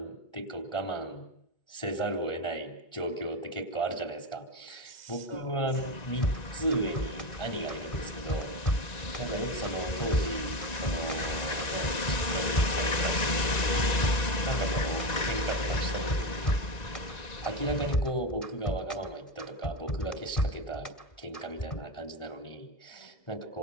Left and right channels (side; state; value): right; late; 1.9 ms